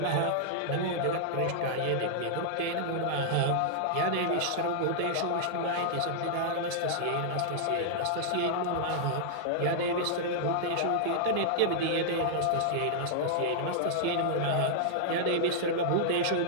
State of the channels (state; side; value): different; both; correlation -0.01